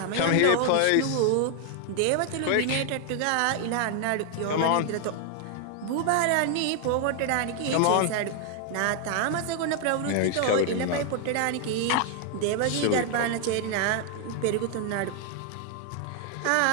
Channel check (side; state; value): both; different; correlation 0.00